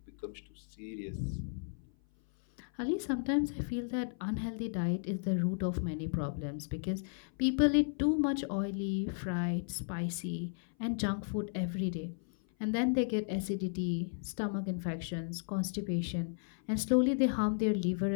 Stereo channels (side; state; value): right; silent; 55 dB below the other